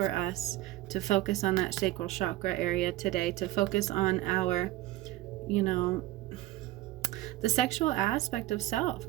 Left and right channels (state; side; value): quieter; left; 16.6 dB